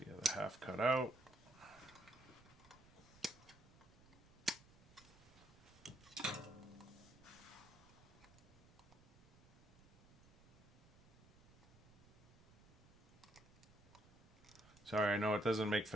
the other half cut out. Sorry, I know it doesn't make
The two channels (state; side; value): noise; right; rumble, 24 dB below the sound